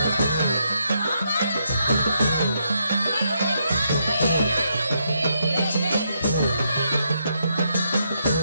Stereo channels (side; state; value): both; inverted; correlation -0.78